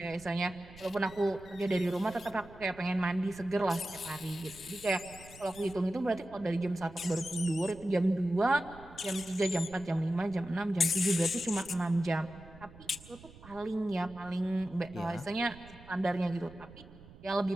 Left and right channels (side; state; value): right; noise; rumble, 20 dB below the sound